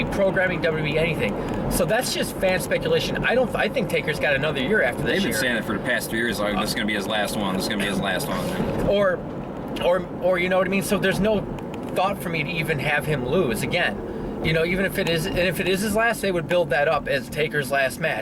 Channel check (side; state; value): both; identical; correlation 1.00